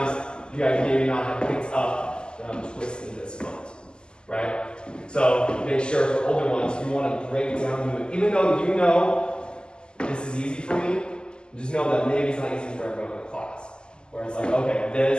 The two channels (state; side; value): late; right; 0.047 ms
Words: you guys maybe not have picked up that I'm twisting this foot, right? So make sure for older ones, you want to break down the movement. Even though you know this is easy for me, just know that maybe it's not easy for everyone in the class. Where it's like, okay,